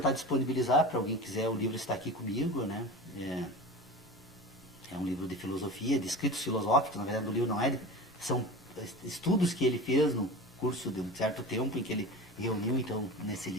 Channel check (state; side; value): normal; both; correlation 0.32